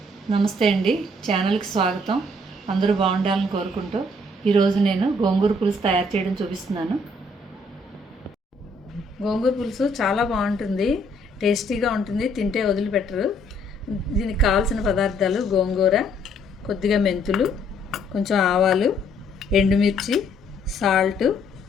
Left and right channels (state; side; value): normal; both; correlation 0.66